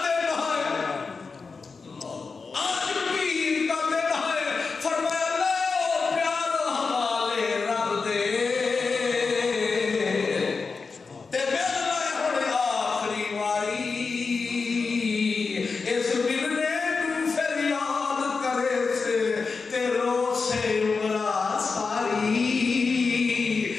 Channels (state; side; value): quieter; right; 4.7 dB